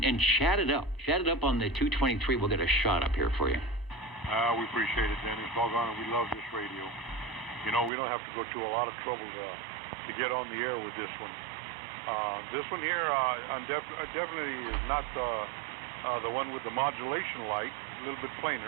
chat it up. Chat it up on the 223. We'll get a shot up here for you. We appreciate it, Dennis. Doggone it, we love this radio. You know, we don't have to go through a lot of trouble to get on the air with this one. This one here, definitely is not the one with the modulation light, a little bit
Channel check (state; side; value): drops out; left; at 7.9 s